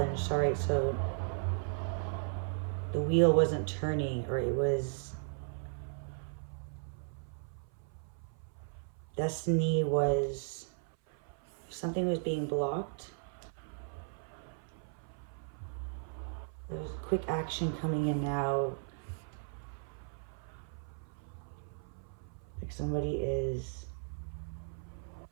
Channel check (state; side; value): silent; left; 54 dB below the other